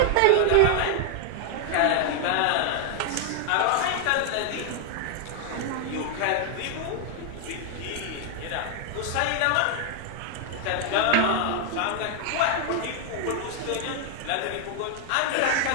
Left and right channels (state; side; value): different; both; correlation 0.00